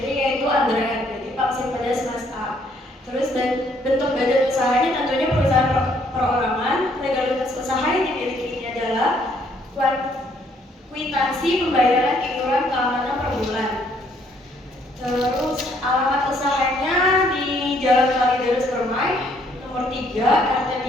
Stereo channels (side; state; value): both; normal; correlation 0.66